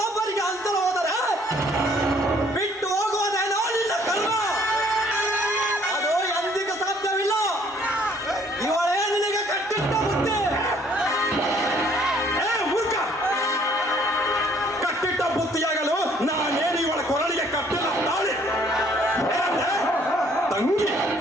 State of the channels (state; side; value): normal; both; correlation 0.61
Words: ಅಂತಲ ಹೋದರೆ ಬಿಟ್ಟು ಹೋಗುವುದೇನೋ ನಿನ್ನ ಕರ್ಮ. ಅದು ಎಂದಿಗೂ ಸಾಧ್ಯವಿಲ್ಲ. ಇವಳೇ ನಿನಗೆ ಕಟ್ಟಿಟ್ಟ ಬುದ್ಧಿ. ಮೂರ್ಖ, ಕಟ್ಟಿಟ್ಟ ಬುತ್ತಿಯಾಗಲು ನಾನೇನು ಇವಳ ಕೊರಳಿಗೆ ಕಟ್ಟಿಲ್ಲ ತಾಳಿ. ತಂಗಿ